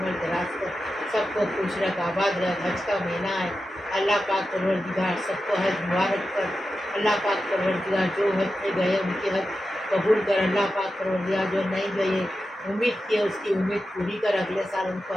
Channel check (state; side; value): normal; both; correlation 0.91